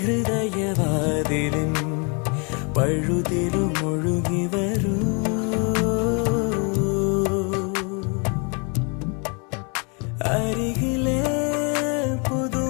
ഹൃദയവാതിലിൻ പഴുതിലും ഒഴുകി വരൂ. അരികിലെ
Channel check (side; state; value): right; quieter; 34.3 dB